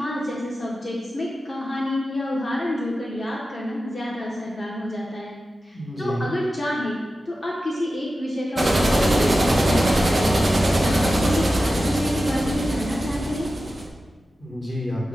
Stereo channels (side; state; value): both; normal; correlation 0.93